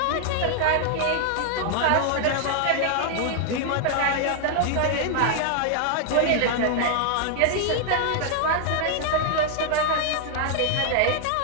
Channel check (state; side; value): different; both; correlation 0.00